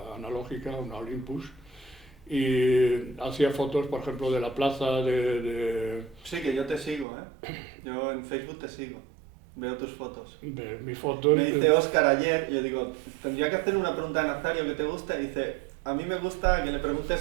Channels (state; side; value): drops out; left; at 7.1 s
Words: analógica, una Olympus, y hacía fotos, por ejemplo, de la plaza, Sí, que yo te sigo, ¿eh? Yo en Facebook te sigo. Veo tus fotos. de mis fotos. Me dice Óscar ayer, yo digo, tendría que hacer una pregunta a Nazario que te gusta, y dice, a mí me gusta que le preguntes